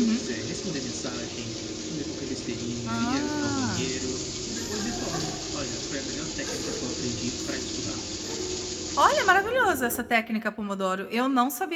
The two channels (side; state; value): both; identical; correlation 1.00